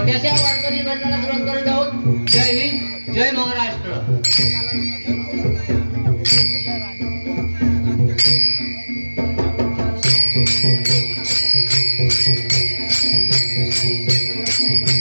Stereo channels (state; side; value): inverted; both; correlation -1.00